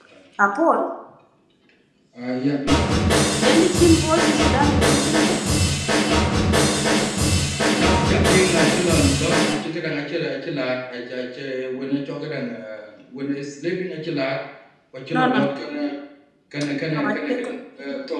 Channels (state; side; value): identical; both; correlation 1.00